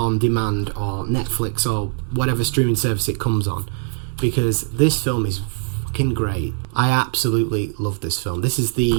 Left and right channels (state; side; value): silent; left; 65 dB below the other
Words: demand or Netflix or whatever streaming service it comes on, because this film is fucking great. I absolutely love this film. This is